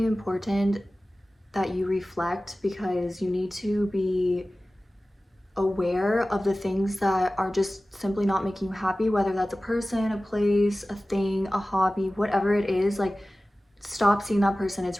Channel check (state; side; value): normal; both; correlation 0.96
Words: important that you reflect because you need to be aware of the things that are just simply not making you happy, whether that's a person, a place, a thing, a hobby, whatever it is. Like, stop seeing that person.